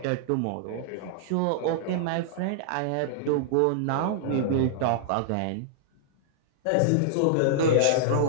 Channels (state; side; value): different; both; correlation -0.01